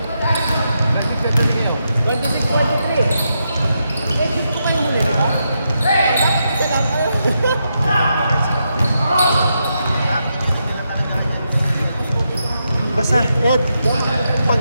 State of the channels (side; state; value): both; inverted; correlation -0.83